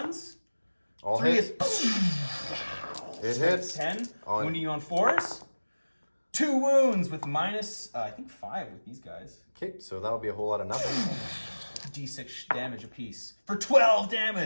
All 3 hit. is It hits. 10. Wounding you on 4s. 2 wounds with minus, I think 5 with these guys. Okay, so that'll be a whole lot of nothing. D6 damage apiece for 12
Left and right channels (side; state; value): both; inverted; correlation -1.00